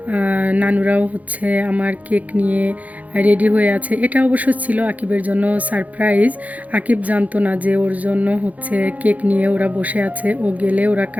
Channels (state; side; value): late; left; 0.075 ms